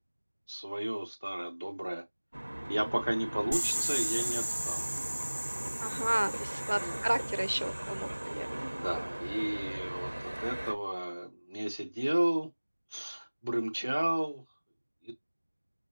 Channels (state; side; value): inverted; both; correlation -1.00